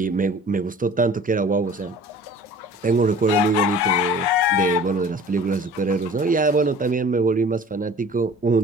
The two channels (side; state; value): both; normal; correlation 0.45